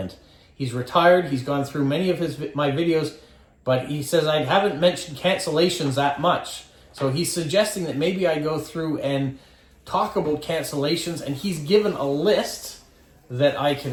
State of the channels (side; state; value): both; identical; correlation 1.00